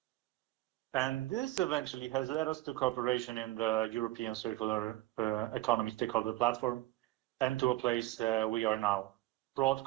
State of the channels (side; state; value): left; quieter; 17.3 dB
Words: And this eventually has led us to cooperation in the European Circular Economy Stakeholder Platform and to a place we are now. Broad